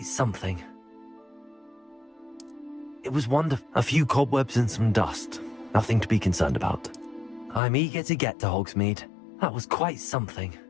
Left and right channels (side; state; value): right; drops out; at 7.6 s